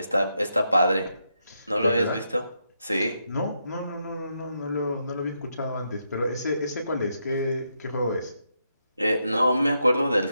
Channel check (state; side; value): inverted; both; correlation -0.82